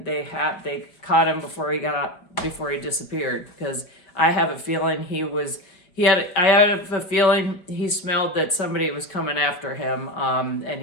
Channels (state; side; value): late; right; 4.8 ms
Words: they caught him before he disappeared, because I have a feeling I had a feeling he smelled that somebody was coming after him, and